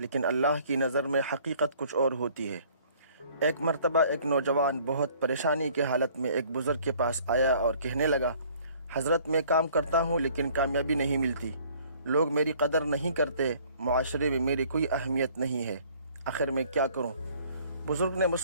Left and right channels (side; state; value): both; inverted; correlation -0.57